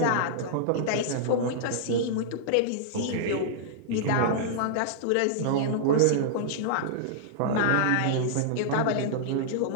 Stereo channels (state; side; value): different; both; correlation -0.02